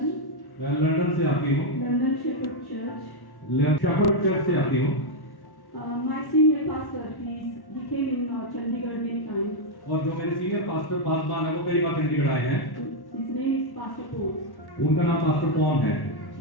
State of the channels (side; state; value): right; late; 1.1 ms